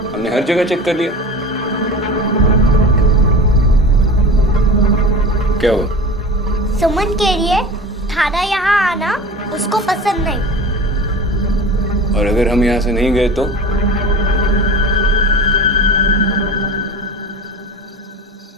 हमने हर जगह चेक कर लिया। क्या हुआ? सुमन कह रही है थाना यहाँ आना उसको पसंद नहीं। और अगर हम यहाँ से नहीं गए तो?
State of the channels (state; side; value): normal; both; correlation 0.34